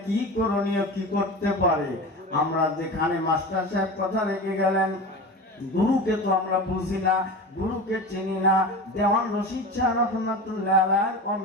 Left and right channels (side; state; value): both; normal; correlation 0.29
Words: কি করণীয়, কি করতে পারে? আমরা যেখানে মাস্টার সাহেব কথা রেখে গেলেন, গুরুকে তো আমরা বুঝি না, গুরুকে চিনি না। দেওয়ান রশিদ শাহ রহমাতুল্লাহ আলাইহির